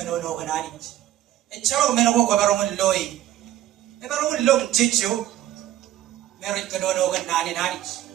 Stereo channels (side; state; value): left; quieter; 12.8 dB